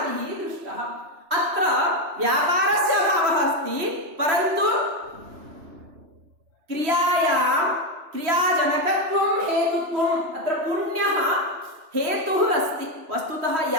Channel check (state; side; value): late; left; 3.0 ms